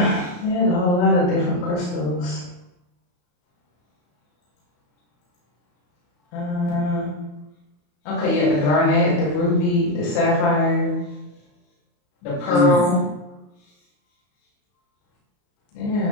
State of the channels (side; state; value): right; late; 34 ms